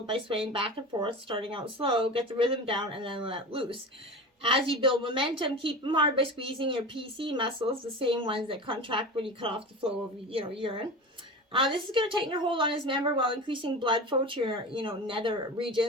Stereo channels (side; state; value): both; normal; correlation 0.30